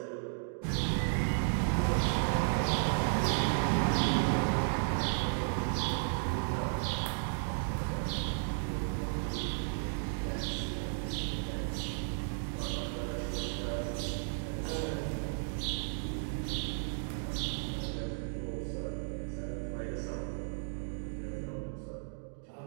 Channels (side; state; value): left; silent; digital silence